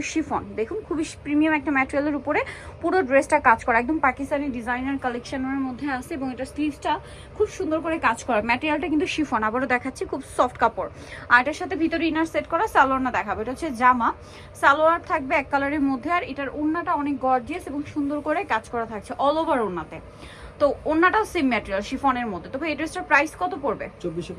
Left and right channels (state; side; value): identical; both; correlation 1.00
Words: শিফন। দেখুন খুবই প্রিমিয়াম একটা ম্যাটেরিয়ালের উপরে পুরো ড্রেসটা কাজ করা, একদম পাকিস্তানি ডিজাইনার কালেকশনের মধ্যে আছে এবং এটা স্লিভসটা খুব সুন্দর করে কাজ করা। ম্যাটেরিয়ালটা কিন্তু শিফন, আবারও দেখাচ্ছি, খুব সফট কাপড়। আর এটার সাথে ভিতরে ইনার সেট করা সালোয়ার না দেখাবো। এটা হচ্ছে জামা, সালোয়ার থাকবে এক কালারের মধ্যে। আর এটার ওড়নাটা অনেক গর্জিয়াস এবং সুন্দর করে কাজ করা থাকছে অল ওভার ওড়নাতে। তো ওড়নাটাও সেম ম্যাটেরিয়াল শিফনের মধ্যে। তবে এই ড্রেসটার প্রাইস কত পড়বে?